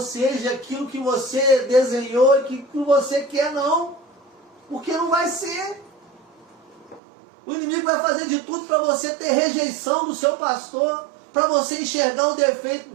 seja aquilo que você desenhou e que você quer, não. Porque não vai ser. O inimigo vai fazer de tudo para você ter rejeição do seu pastor, para você enxergar o defeito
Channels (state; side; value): drops out; left; at 7.0 s